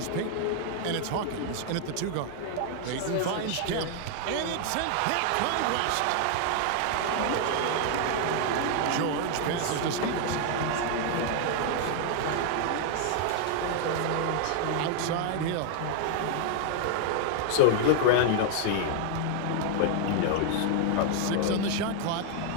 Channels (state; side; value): different; both; correlation 0.00